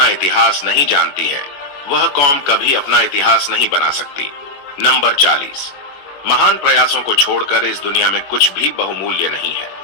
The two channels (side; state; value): right; late; 21 ms